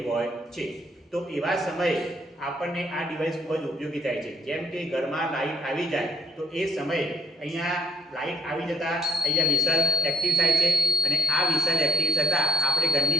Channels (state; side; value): normal; both; correlation 0.73